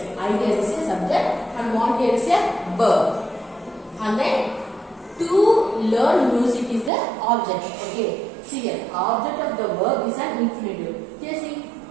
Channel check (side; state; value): left; drops out; at 6.9 s